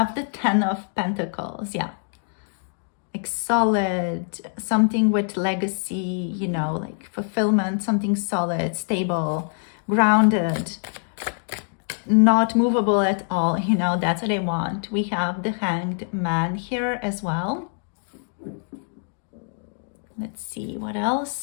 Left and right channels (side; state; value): right; silent; 62 dB below the other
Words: the 10 of Pentacles. Yeah. Like solid, something with legacy, you know, like fulfillment, something solid, stable, grounded, not movable at all, you know, that's what I want. We have the Hanged Man here as well. Let's see what